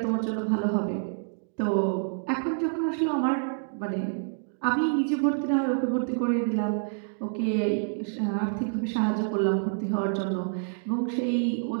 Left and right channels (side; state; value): left; silent; digital silence